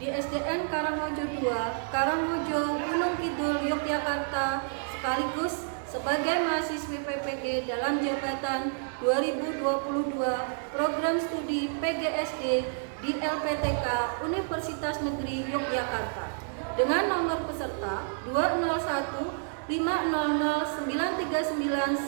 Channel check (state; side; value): silent; left; 58 dB below the other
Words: di SDN Karangmojo 2, Karangmojo, Gunung Kidul, Yogyakarta, sekaligus sebagai mahasiswi PPG dalam jabatan 2022 Program Studi PGSD di LPTK Universitas Negeri Yogyakarta dengan nomor peserta 201